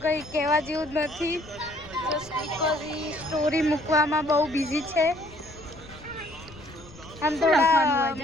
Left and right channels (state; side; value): noise; left; rumble, 20 dB below the sound